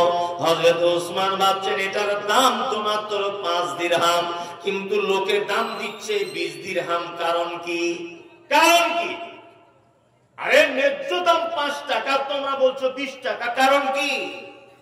হযরত ওসমান ভাবছেন এটার দাম তো মাত্র 5 দিরহাম, কিন্তু লোকে দাম দিচ্ছে 20 দিরহাম। কারণ কি? কারণ কি? আরে ন্যায্য দাম 5 টাকা, তোমরা বলছো 20 টাকা, কারণ কি?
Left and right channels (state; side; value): identical; both; correlation 1.00